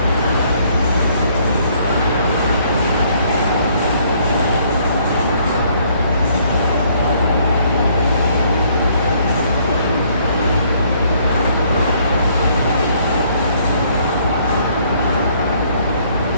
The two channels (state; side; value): inverted; both; correlation -0.65